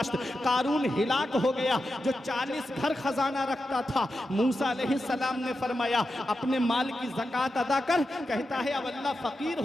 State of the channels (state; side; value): normal; both; correlation 0.89